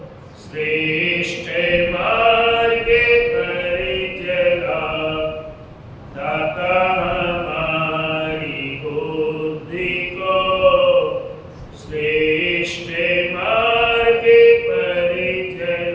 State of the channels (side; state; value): both; identical; correlation 1.00